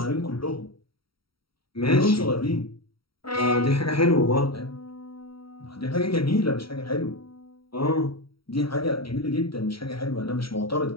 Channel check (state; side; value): late; right; 0.75 ms